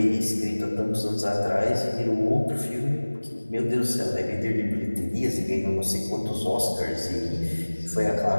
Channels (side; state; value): both; inverted; correlation -1.00